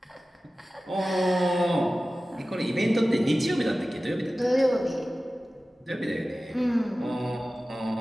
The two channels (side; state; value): both; normal; correlation 0.96